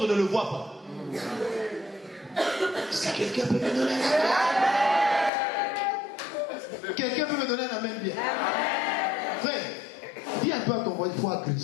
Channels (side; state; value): right; drops out; at 5.3 s